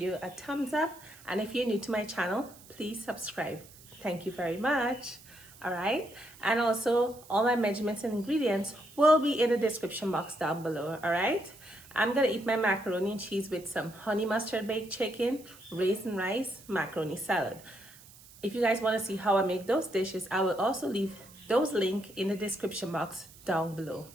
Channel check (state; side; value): noise; right; hiss, 22 dB below the sound